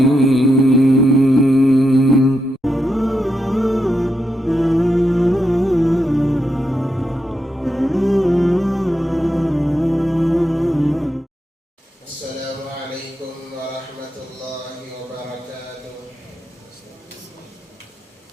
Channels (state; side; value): normal; both; correlation 0.84